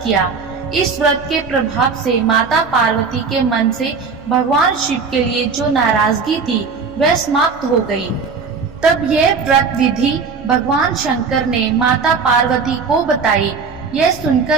किया। इस व्रत के प्रभाव से माता पार्वती के मन से भगवान शिव के लिए जो नाराजगी थी वह समाप्त हो गई। तब यह व्रत विधि भगवान शंकर ने माता पार्वती को बताई। यह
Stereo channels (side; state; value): left; quieter; 5.1 dB